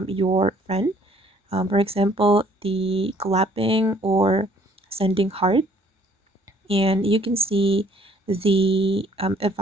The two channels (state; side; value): normal; both; correlation 0.60